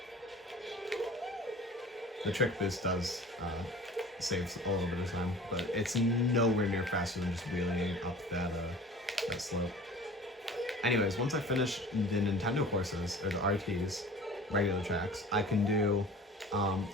The trick boost does save a little bit of time, but it's nowhere near faster than just wheeling up that slope. Anyways, once I finish the Nintendo courses, or the RTs, regular tracks, I can do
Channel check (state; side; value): normal; both; correlation 0.43